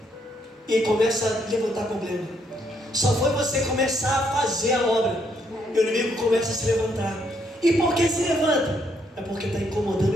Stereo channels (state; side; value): normal; both; correlation 0.73